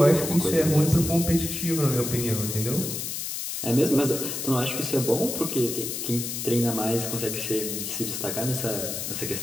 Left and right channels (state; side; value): noise; left; hiss, 4 dB below the sound